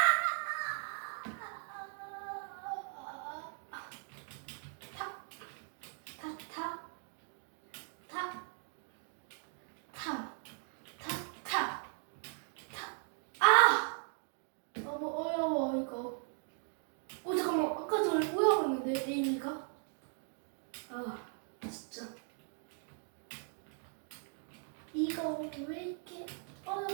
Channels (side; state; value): left; silent; 52 dB below the other